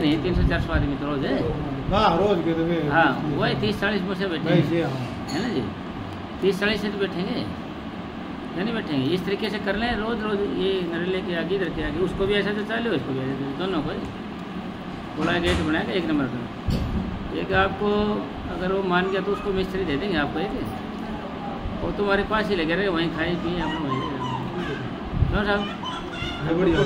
300-400 आदमी तो रोज है। हाँ रोज के तो हाँ वही 30-40 मुझसे बैठेंगे, है ना जी, 30-40 से तो बैठेंगे, नहीं बैठेंगे। इस तरीके से कर लें रोज रोज, ये नरेले के आगे इधर के आगे, उसको भी ऐसा तो चाले, उसको भी ऐसा, दोनों को पूरा गेट बनाएगा 1 नंबर का। एक आपको अगर वो मान गया तो उसको मिस्त्री दे देंगे आपको एक, वो तुम्हारे पास ही लगे रहे, वहीं खाए पिए अपना वहीं क्यों साहब,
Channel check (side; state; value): both; identical; correlation 1.00